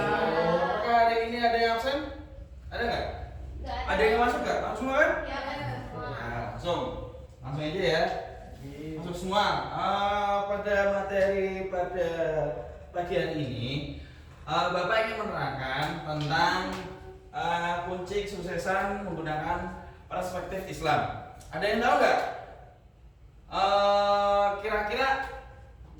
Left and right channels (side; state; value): both; identical; correlation 1.00